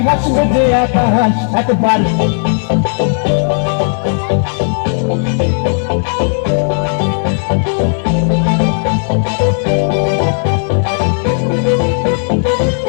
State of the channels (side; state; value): right; silent; digital silence